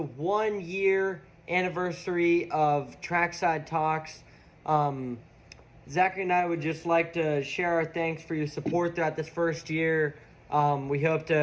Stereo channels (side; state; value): both; identical; correlation 1.00